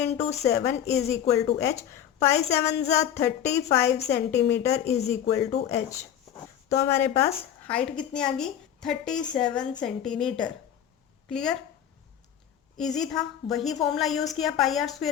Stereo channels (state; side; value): quieter; right; 9.9 dB